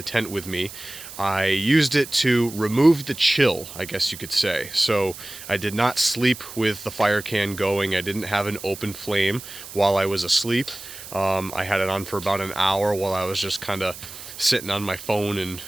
tent with me. I used it to remove the chill, I guess you could say. So I did not sleep with the fire can going. I didn't have an open flame while I was asleep. I had it on for about an hour while I was just kind of sitting on my phone and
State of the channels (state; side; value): noise; right; hiss, 14 dB below the sound